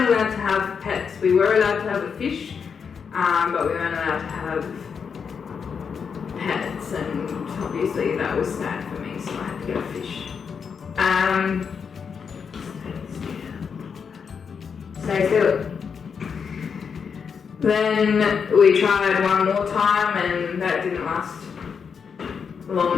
allowed to have pets. We were allowed to have a fish, but we weren't allowed to have pets, and obviously that was sad for me, so I had to get a fish. Stay still. Then we tried one more time and that didn't last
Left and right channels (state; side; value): quieter; right; 6.3 dB